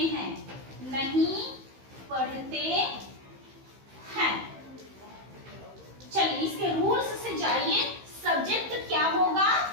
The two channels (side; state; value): left; late; 15 ms